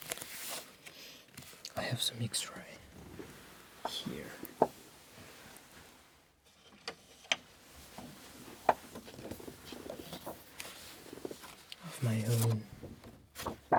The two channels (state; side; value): identical; both; correlation 1.00